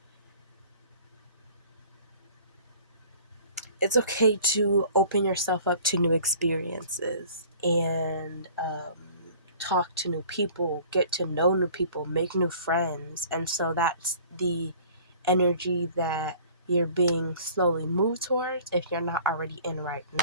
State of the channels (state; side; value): inverted; both; correlation -0.49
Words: open yourself up to new experiences, and talk to new people, get to know new people, make new friends. And so that's the energy that you're being slowly moved towards if you're not already in right